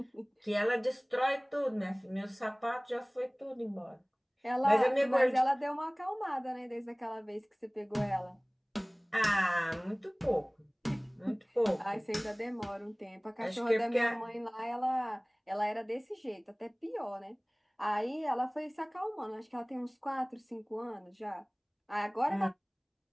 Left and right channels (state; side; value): identical; both; correlation 1.00